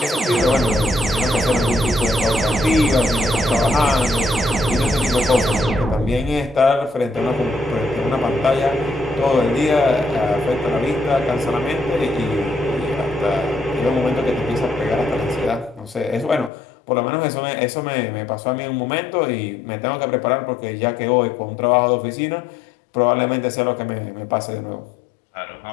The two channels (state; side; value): drops out; right; at 16.5 s